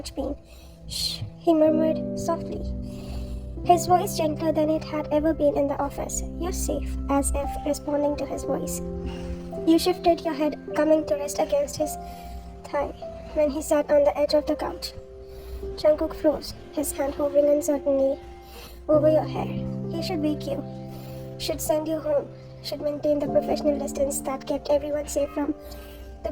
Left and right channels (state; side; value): identical; both; correlation 1.00